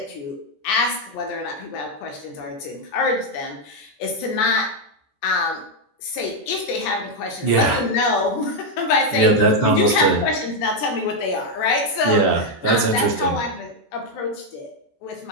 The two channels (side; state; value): right; late; 14 ms